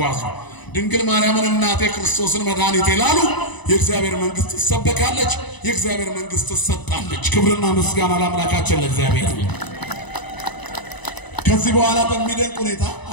ድንግል ማርያምን እናቴ ክርስቶስን መድኃኒቴ ላሉ የእግዚአብሔር መንግስት ትሰበካለች። የእግዚአብሔር መንግስት ትሰጣለች። ክብርና ምስጋና ለአምላካችን ለእግዚአብሔር። ከዚህ በኋላ በሚደንቅ ሁኔታ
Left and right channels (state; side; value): late; right; 1.0 ms